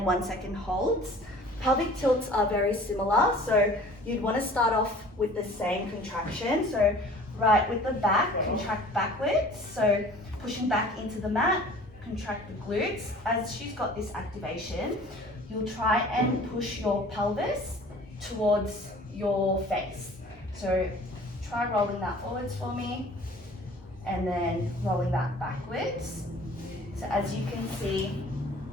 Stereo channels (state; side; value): normal; both; correlation 0.47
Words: 1 second holds. Pelvic tilts are very similar, so you'd want to start off with the same contraction. So right with the back, contract backwards. So pushing back into the mat, contract the glutes. As she's got this activation, you'll try and push your pelvis towards your face. So try rolling that forwards for me, and then rolling that backwards. So as you can see,